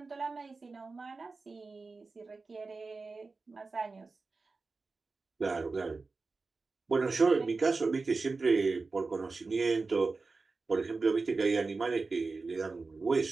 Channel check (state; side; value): quieter; left; 4.0 dB